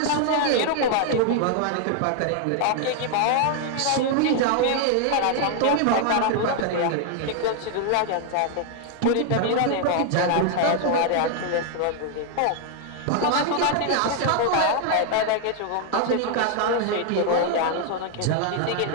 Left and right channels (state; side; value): different; both; correlation 0.00